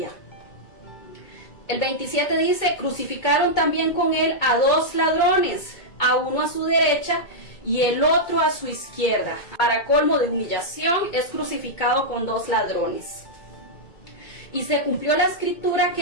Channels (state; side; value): late; right; 2.2 ms